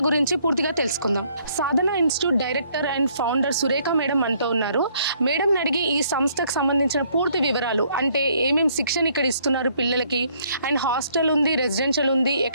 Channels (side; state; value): both; inverted; correlation -0.65